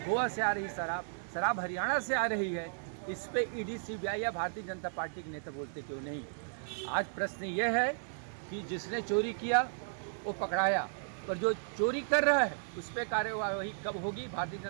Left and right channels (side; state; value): left; silent; digital silence